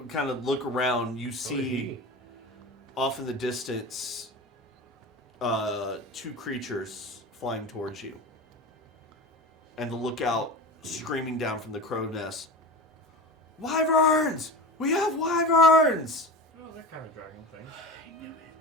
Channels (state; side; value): normal; both; correlation 0.30